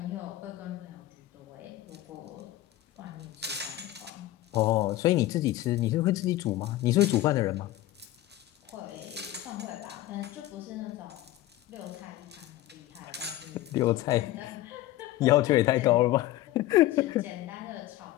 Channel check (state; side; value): quieter; right; 15.3 dB